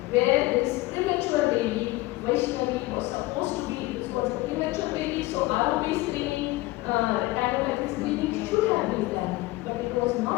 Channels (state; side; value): quieter; right; 19.8 dB